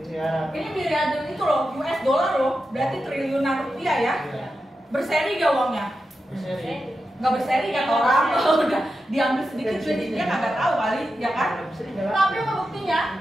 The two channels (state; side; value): normal; both; correlation 0.90